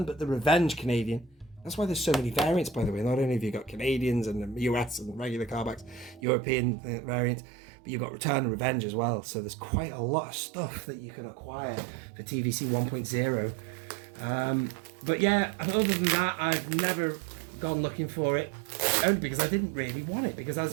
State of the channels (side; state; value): left; drops out; at 6.2 s